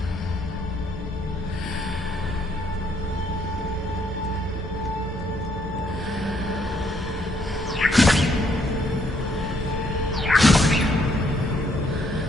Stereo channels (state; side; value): normal; both; correlation 0.70